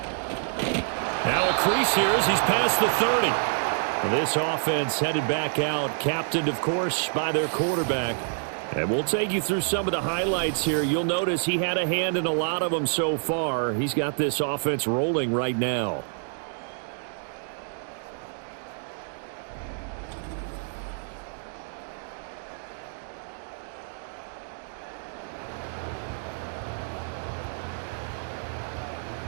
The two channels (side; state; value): left; silent; digital silence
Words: Now a crease here as he's past the 30. Well, this offense headed back out, captained, of course, by their quarterback. And we'll take you through some of the highlights here. You'll notice he had a hand in a lot of them so far. He's got this offense rolling right now.